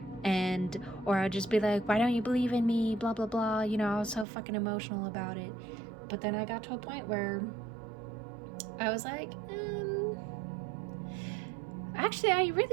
Or I'd just be like, why don't you believe in me, blah, blah, blah. You know, I was so fucking emotional about it. But then I got to a point where I was like, actually, I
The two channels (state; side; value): drops out; left; at 4.2 s